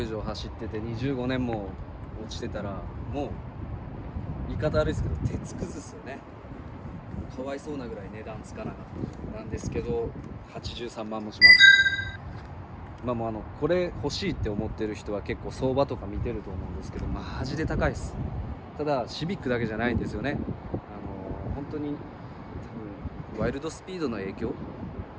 以上走ってて25年も落ちてたら、もう言い方悪いですけど鉄くずっすよね。かわいそうなぐらい値段つかなかったなんですけど、83万もします。これ欲しいって思ってる人は結構相場とか見てると思うんですけど、マジで高いです。ただシビックだけじゃないんですよね。本当に多分ワイルドスピードの影響か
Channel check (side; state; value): both; identical; correlation 1.00